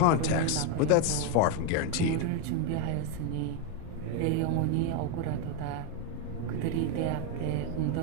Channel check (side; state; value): both; different; correlation 0.02